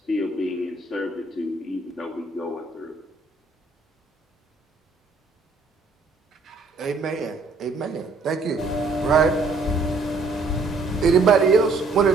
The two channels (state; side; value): quieter; left; 3.6 dB